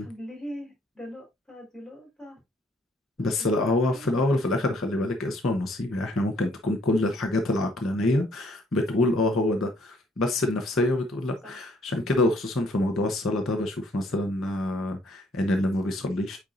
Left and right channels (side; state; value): both; normal; correlation 0.65